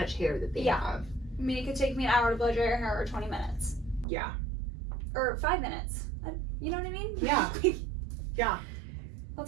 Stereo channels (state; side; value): drops out; left; at 4.0 s